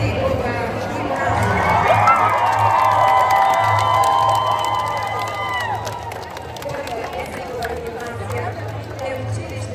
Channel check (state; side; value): identical; both; correlation 1.00